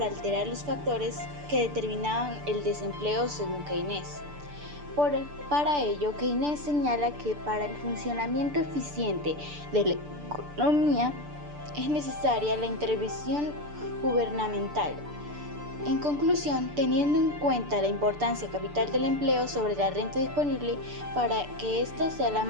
alterar los factores que determinaban el desempleo según Keynes. Para ello, Keynes señala que para el funcionamiento eficiente de la economía es necesaria la intervención gubernamental. En conclusión, teniendo en cuenta la importancia capital del empleo sobre la renta disponible, para que ésta sea la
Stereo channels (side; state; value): left; late; 6.8 ms